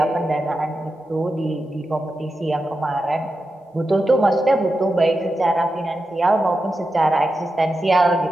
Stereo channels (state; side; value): normal; both; correlation 0.90